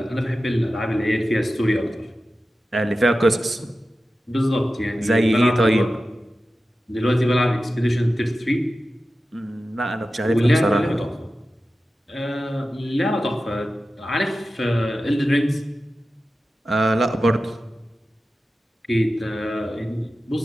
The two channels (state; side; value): normal; both; correlation 0.93